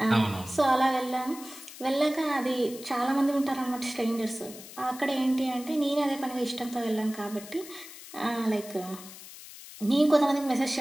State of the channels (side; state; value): left; noise; hiss, 15 dB below the sound